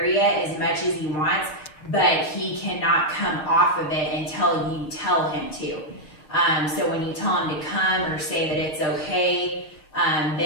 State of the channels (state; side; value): late; right; 6.8 ms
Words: as much as he wants, but he cannot come off of it until you tell him to. So when you tell him to come or say that it's okay,